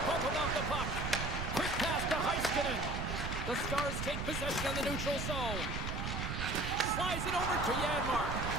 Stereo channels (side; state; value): right; noise; rumble, 3 dB below the sound